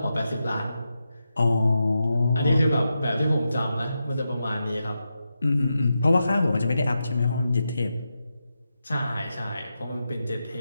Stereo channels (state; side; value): inverted; both; correlation -0.88